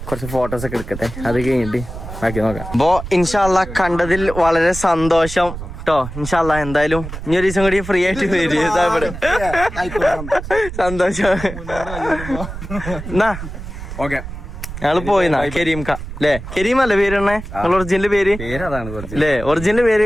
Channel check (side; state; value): right; noise; rumble, 10 dB below the sound